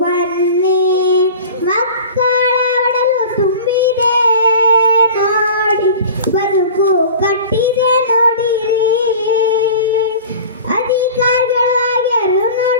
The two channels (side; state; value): both; inverted; correlation -0.38